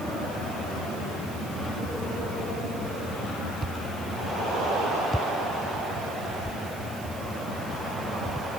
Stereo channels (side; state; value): right; noise; hiss, 15 dB below the sound